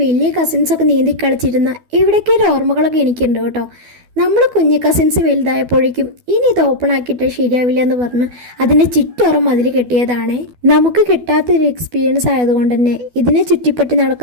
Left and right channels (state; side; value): late; left; 12 ms